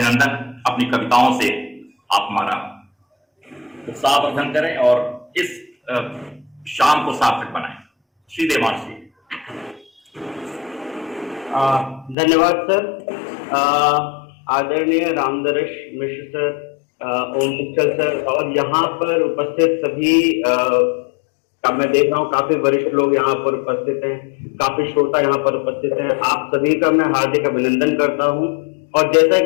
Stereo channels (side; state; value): right; drops out; at 12.2 s